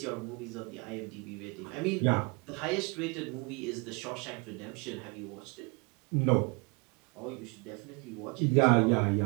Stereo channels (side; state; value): left; quieter; 30.6 dB